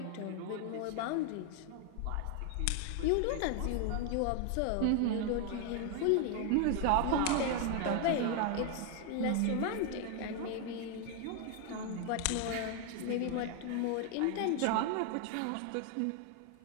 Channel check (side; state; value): both; different; correlation 0.00